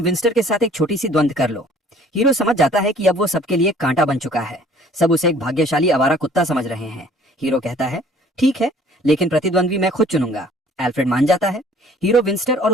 विंस्टर के साथ एक छोटी सी द्वंद्व कर लो। हीरो समझ जाता है कि अब वो सबके लिए कांटा बन चुका है। सब उसे एक भाग्यशाली आवारा कुत्ता समझ रहे हैं। हीरो कहता है, ठीक है, लेकिन प्रतिद्वंद्वी मैं खुद चुनूंगा। एल्फ्रेड मान जाता है। हीरो विंस्टर और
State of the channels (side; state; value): both; normal; correlation 0.55